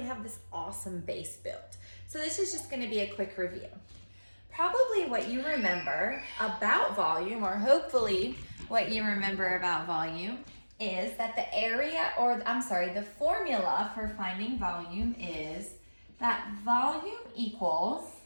have this awesome base built. So this is just gonna be a quick review. Probably what you remember about volume, or hopefully what you remember about volume, is that the formula for finding volume is that volume equals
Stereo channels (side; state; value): both; inverted; correlation -1.00